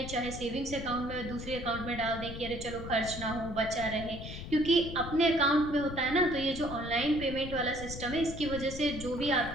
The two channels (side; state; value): left; noise; rumble, 9 dB below the sound